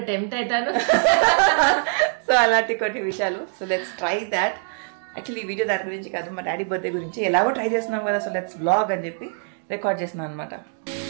టెంప్ట్ అవుతాను. సో అలాంటి కొన్ని విషయాలు. So let's try that. Actually ఈ వీడియో దాని గురించి కాదు, మా డాడీ బర్త్డే గురించి. ఎలాగో ట్రై చేస్తున్నాం కదా, సో లెట్స్ వ్లాగ్ అని చెప్పి రికార్డ్ చేస్తున్నాను అనమాట.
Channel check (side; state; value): left; silent; 62 dB below the other